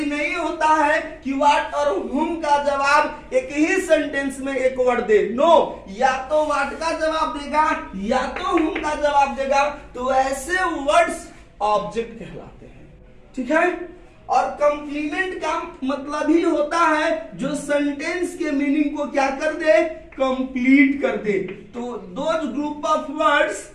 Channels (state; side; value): identical; both; correlation 1.00